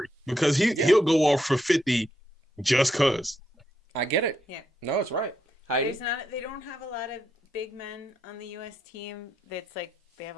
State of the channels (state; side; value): normal; both; correlation 0.79